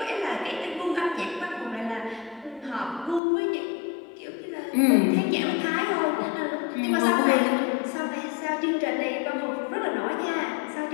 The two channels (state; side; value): drops out; right; at 3.2 s